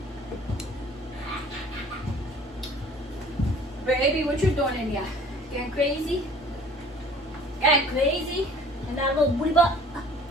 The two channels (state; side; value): normal; both; correlation 0.50